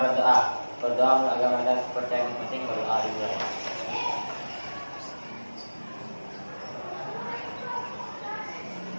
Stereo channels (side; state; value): both; inverted; correlation -1.00